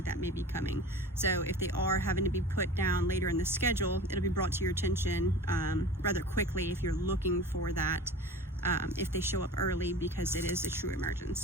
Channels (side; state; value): both; normal; correlation 0.37